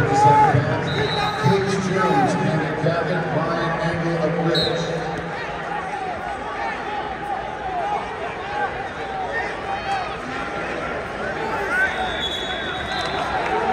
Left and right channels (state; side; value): identical; both; correlation 1.00